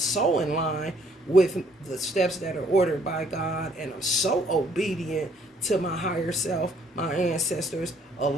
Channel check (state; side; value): normal; both; correlation 0.64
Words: in line with the steps that are ordered by God, and I'm so obedient to my higher self, my ancestors,